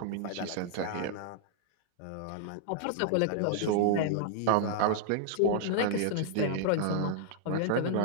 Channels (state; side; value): different; both; correlation -0.01